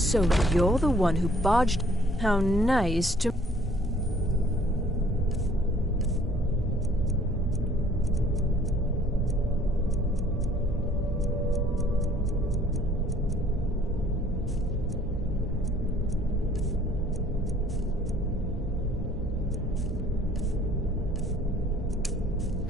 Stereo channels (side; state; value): both; normal; correlation 0.58